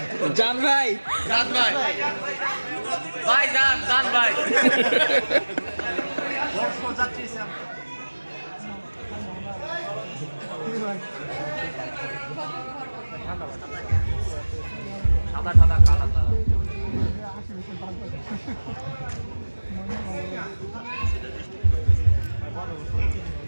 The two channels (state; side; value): inverted; both; correlation -1.00